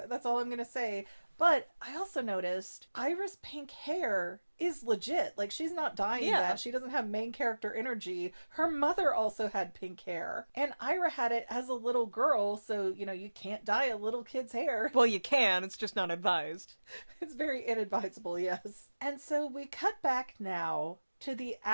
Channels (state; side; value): inverted; both; correlation -1.00